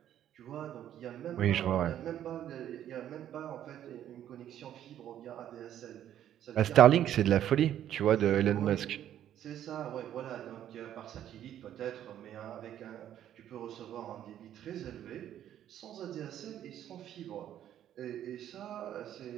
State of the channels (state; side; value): quieter; left; 11.1 dB